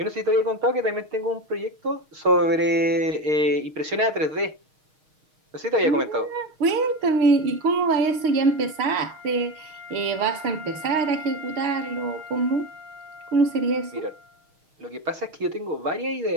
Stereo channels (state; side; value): late; left; 6.4 ms